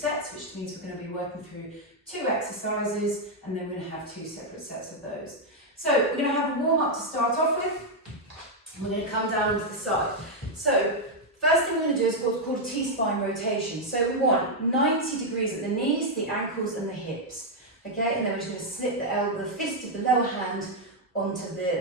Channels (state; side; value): normal; both; correlation -0.01